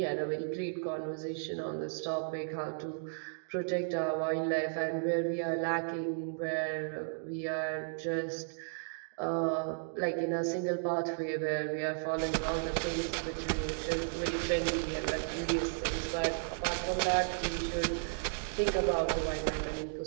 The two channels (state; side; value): silent; left; digital silence